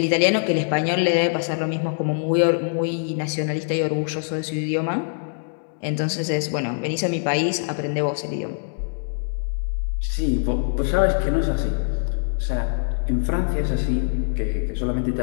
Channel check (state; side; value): silent; right; digital silence